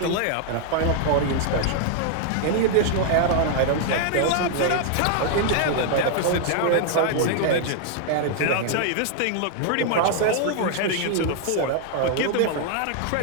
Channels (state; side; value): different; both; correlation 0.00